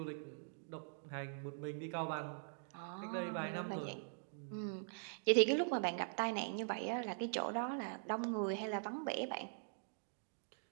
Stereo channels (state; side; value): silent; left; digital silence